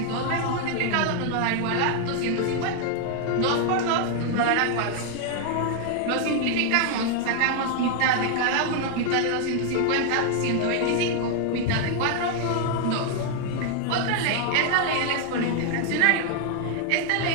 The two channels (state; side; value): different; both; correlation 0.00